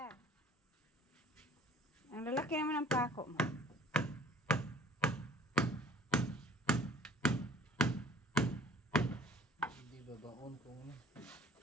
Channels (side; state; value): both; normal; correlation 0.50